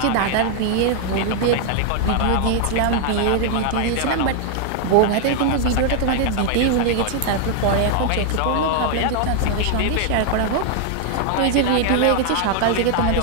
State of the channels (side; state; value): both; different; correlation 0.00